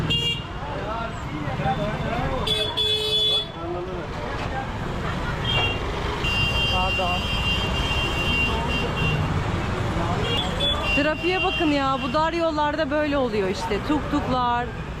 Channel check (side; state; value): both; identical; correlation 1.00